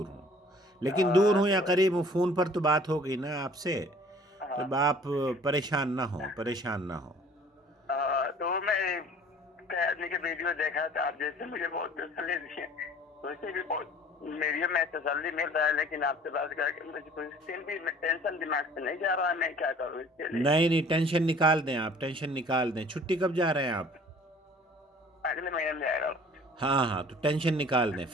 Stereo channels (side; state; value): both; normal; correlation 0.51